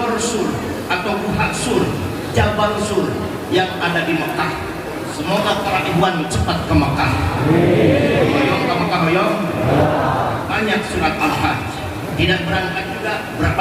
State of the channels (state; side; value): identical; both; correlation 1.00